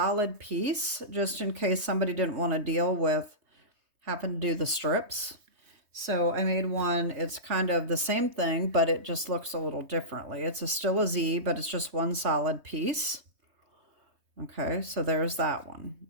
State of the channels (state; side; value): late; left; 3.2 ms